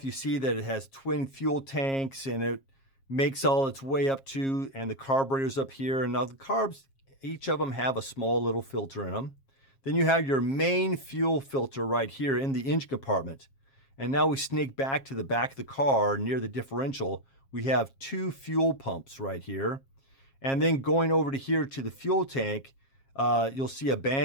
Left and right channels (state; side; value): late; right; 7.4 ms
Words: you see that it has twin fuel tanks and it makes all its way up to, and the carburetor's up here. And now the carbs, each of them have a small little filter in them. Then you have your main fuel filter right here in the engine compartment. And now we sneak back to the back of the car near the differential. We have two fuel pumps right here. And then going over to here to the fuel tank, you'll see a